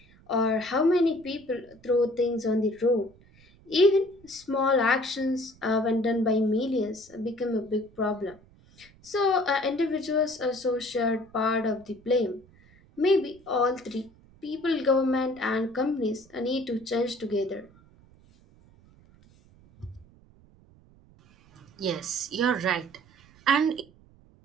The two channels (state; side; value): noise; right; rumble, 27 dB below the sound